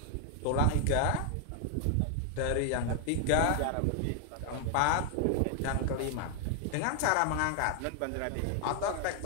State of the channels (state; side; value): different; both; correlation 0.00